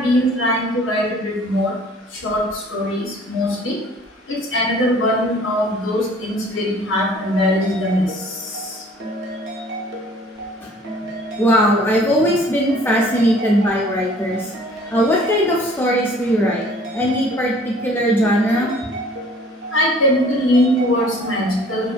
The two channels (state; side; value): normal; both; correlation 0.53